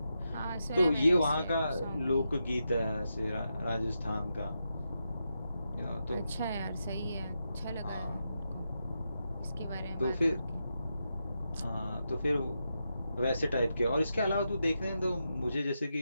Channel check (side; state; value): both; inverted; correlation -0.86